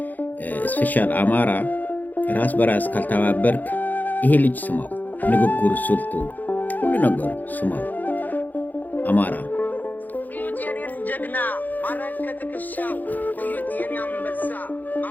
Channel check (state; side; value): late; right; 0.083 ms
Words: ስፔሻል አማራ ራስ በራስ ካልተባበርክ ይሄ ልጅ ስማው፣ ንግግሩ፣ ስልቱ፣ ሁሉ ነገሩ ስማው። አማራ እዩት የኔን ጀግና ማረግ ከትከሻው፣ እዩት የኔ አንበሳ